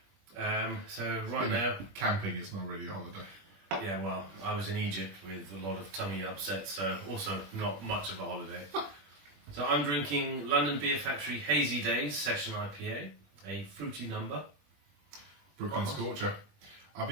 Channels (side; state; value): left; late; 21 ms